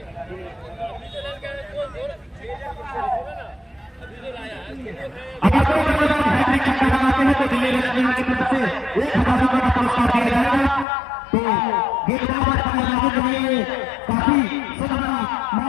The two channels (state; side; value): drops out; right; at 10.9 s